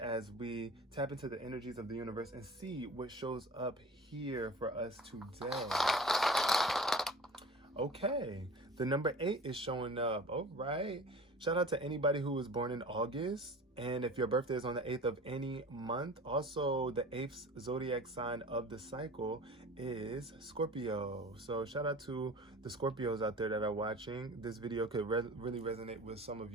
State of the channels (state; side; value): normal; both; correlation 0.39